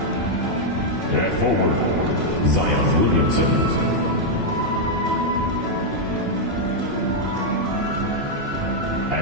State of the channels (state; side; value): late; left; 2.8 ms